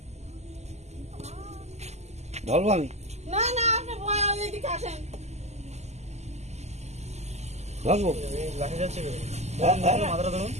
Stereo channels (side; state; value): left; late; 0.32 ms